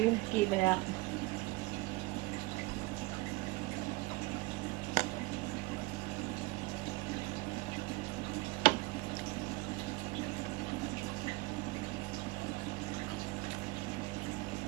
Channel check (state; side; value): quieter; left; 22.1 dB